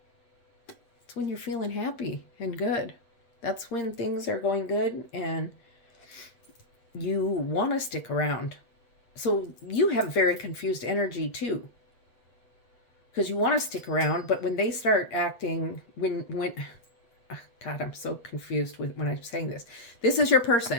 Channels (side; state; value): right; late; 8.1 ms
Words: It's when you're feeling happy and good. That's when things are going good and you want to stick around. So you have very confused energy too. Because you want to stick around, but when they start acting, God, I'm so confused when I'm saying this. This is your